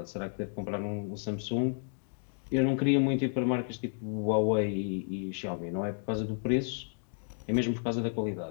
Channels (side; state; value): right; silent; digital silence